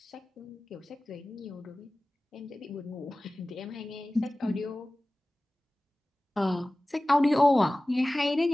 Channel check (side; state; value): both; normal; correlation 0.97